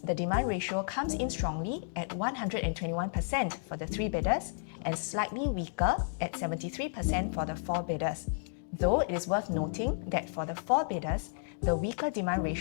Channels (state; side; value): silent; right; digital silence